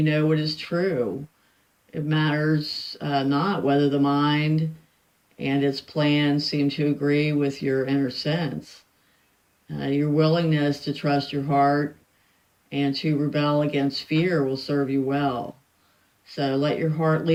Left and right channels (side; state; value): both; identical; correlation 1.00